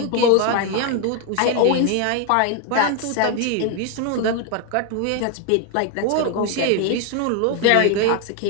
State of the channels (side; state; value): both; different; correlation 0.01